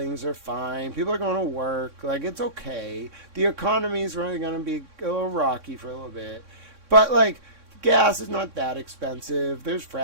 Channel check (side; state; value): left; late; 3.6 ms